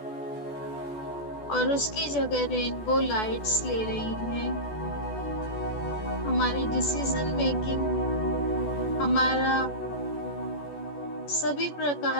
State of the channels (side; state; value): right; late; 14 ms